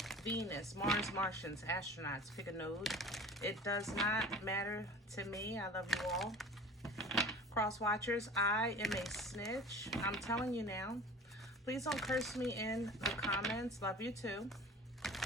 Venus, Mars, Martians, astronauts, pick a node. It does not matter to me. I love you all. Cross watchers, I am a snitch. I'm telling you now. Please don't curse me in the comments. Love you too.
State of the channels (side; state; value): both; normal; correlation 0.41